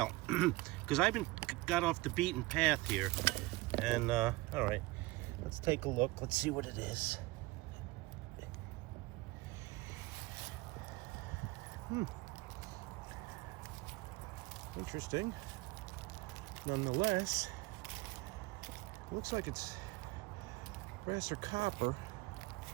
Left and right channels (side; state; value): left; quieter; 20.9 dB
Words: because I've got off the beaten path here. And all right, let's take a look. Let's see what it is. Interesting. Nonetheless, looks like it's brass or copper.